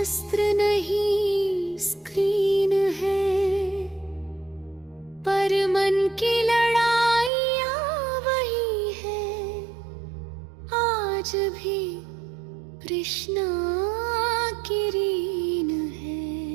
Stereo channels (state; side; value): drops out; left; at 7.3 s